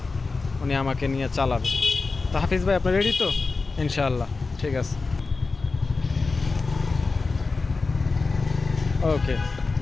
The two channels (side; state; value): right; quieter; 4.0 dB